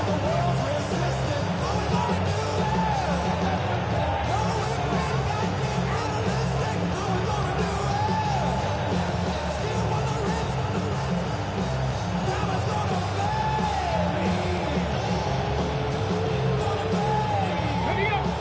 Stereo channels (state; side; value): identical; both; correlation 1.00